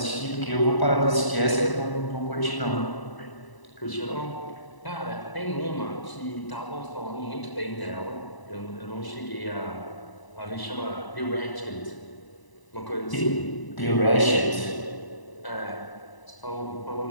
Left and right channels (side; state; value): right; late; 1.0 ms